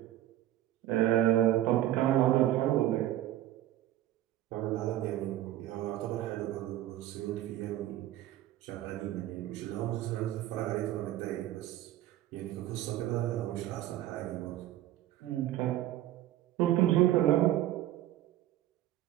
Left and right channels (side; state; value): left; quieter; 13.8 dB